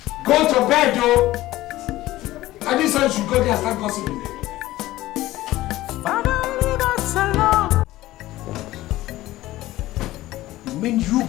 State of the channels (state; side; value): quieter; right; 16.5 dB